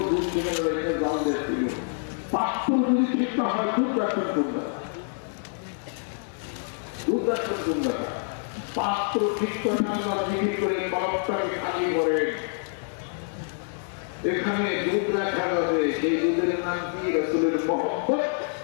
দুধ কিনে রেখে জাল দেখছিল, পাত্র যদি ঠিক না হয় দুধ রাখবেন কোন জায়গা, দুধ রাখবেন কোন জায়গা, পাত্র ঠিক করে আল্লাহ বিক্রি করে কলমটাকে খালি করেন, এখানে দুধ রাখা যাবে, সেই দুধের নাম কি? রাসূলের মহব্বত,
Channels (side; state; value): right; silent; 60 dB below the other